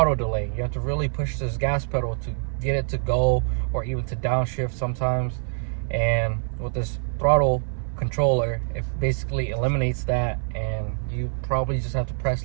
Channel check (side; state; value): left; silent; 57 dB below the other